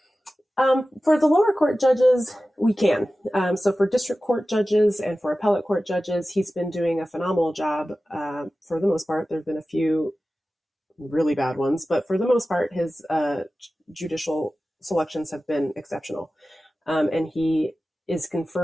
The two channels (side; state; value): both; normal; correlation 0.95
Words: For the lower court judges, we can. So for district court judges and for appellate court judges, he's been doing a phenomenal job. For the most part, there have been a few really bad ones, but for the most part, his judicial selections have been exceptional. And he is